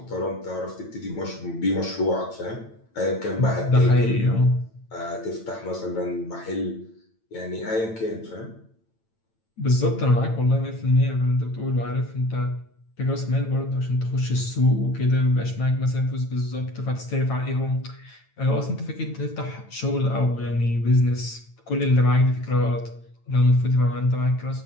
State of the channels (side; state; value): right; late; 9.0 ms